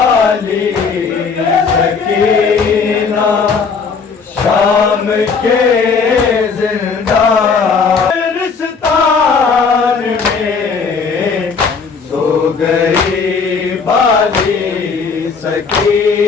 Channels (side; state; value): right; quieter; 5.3 dB